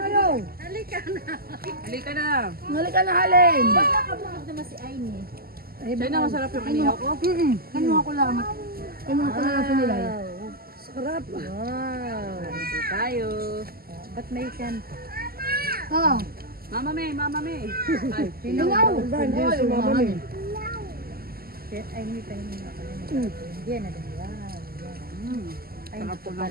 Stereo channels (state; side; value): late; left; 0.44 ms